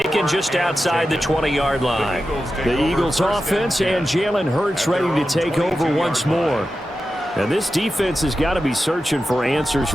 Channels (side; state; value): both; normal; correlation 0.92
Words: just outside the 20-yard line. The Eagles offense and Jalen Hurts ready to take over once more. And this defense has got to be searching for answers